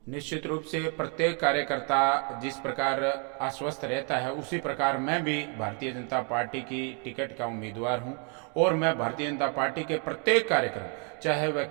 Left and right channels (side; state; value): left; quieter; 36.5 dB